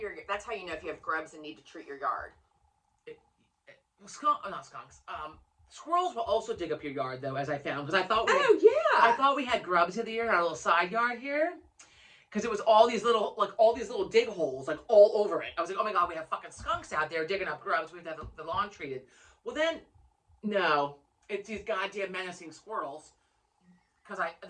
That's how you know if you have grubs and need to treat your yard. Not skunks. Squirrels will also dig up your yard though, as I found, because I thought yeah. I thought we had grubs in the year in our little side yard here. Because it was all these little dig holes, like all over it. I was like, oh my God, we have fucking skunks out there digging up grubs. We have to have the lawn treated. Well then, no, it's these goddamn menacing squirrels. Because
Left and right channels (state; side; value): identical; both; correlation 1.00